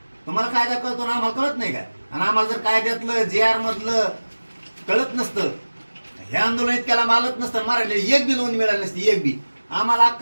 तुम्हाला कायदा कळतो ना, आम्हाला कळत नाही काय? आणि आम्हाला जर कायद्यातलं GR मधलं कळत नसतं, हे आंदोलन इतक्याला मालत नसतं, मारायला एक बी नोंद मिळाली नसती, एक बी. आम्हाला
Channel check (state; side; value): inverted; both; correlation -1.00